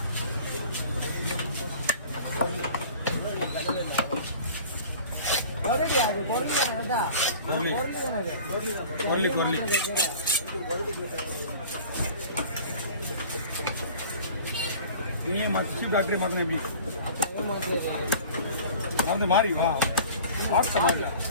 டாக்டரே மாத்தினா எப்படி மருந்து மாறி வா வாட்ஸ் மாறி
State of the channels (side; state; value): both; inverted; correlation -0.43